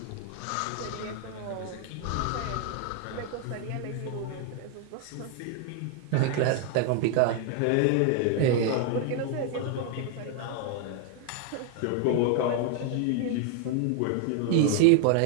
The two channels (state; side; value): different; both; correlation 0.00